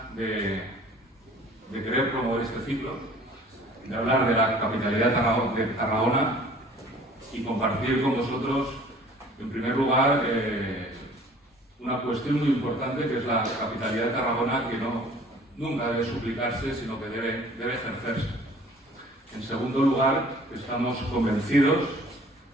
de querer promover este ciclo, de hablar de la capitalidad de Tarragona y compartir con vosotros, en primer lugar, una cuestión muy importante que es la capitalidad de Tarragona, que nunca debe suplicarse, sino que debe ejercerse. En segundo lugar, estamos convencidos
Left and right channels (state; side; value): normal; both; correlation 0.51